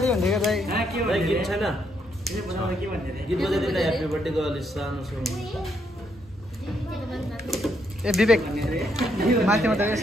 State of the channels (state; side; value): normal; both; correlation 0.75